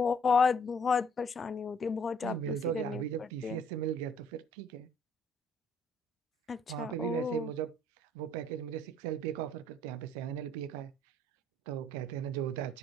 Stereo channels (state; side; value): normal; both; correlation 0.61